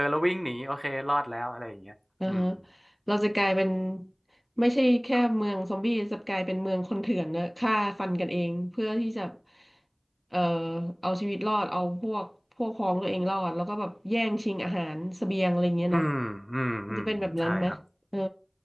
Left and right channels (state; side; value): identical; both; correlation 1.00